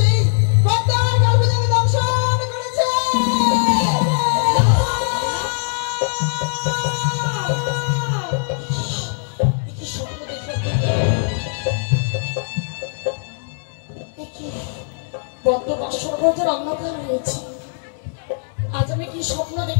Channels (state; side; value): silent; right; digital silence